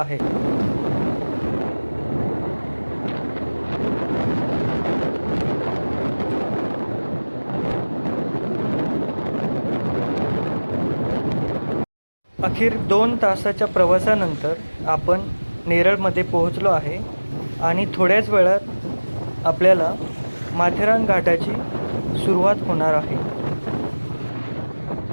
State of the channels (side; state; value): both; inverted; correlation -1.00